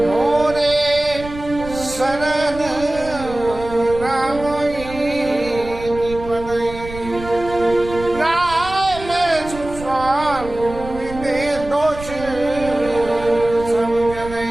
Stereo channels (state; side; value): noise; right; rumble, 13 dB below the sound